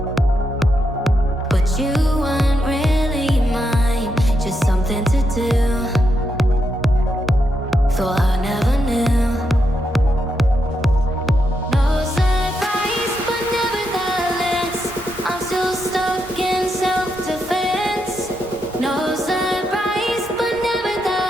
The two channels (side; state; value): both; normal; correlation 0.82